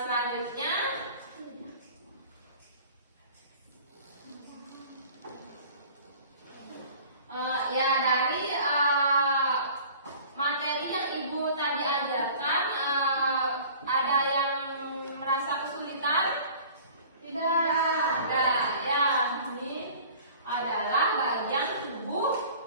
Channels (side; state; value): both; inverted; correlation -0.46